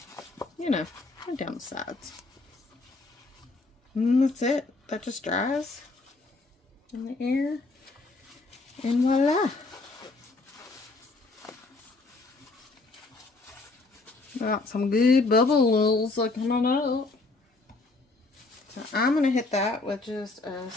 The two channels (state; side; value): quieter; right; 3.5 dB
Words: you know, went down the sides. And that's it. That just dries in the air, and voila. Got some good bubbles coming up. So I'm going to hit that with just a